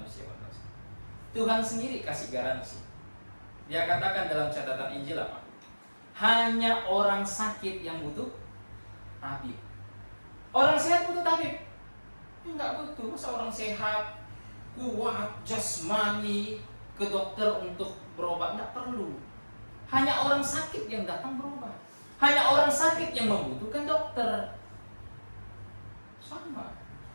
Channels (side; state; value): both; inverted; correlation -1.00